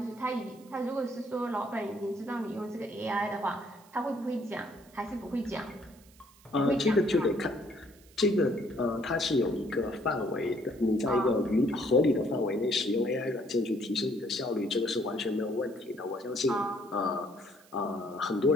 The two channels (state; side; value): noise; right; hiss, 27 dB below the sound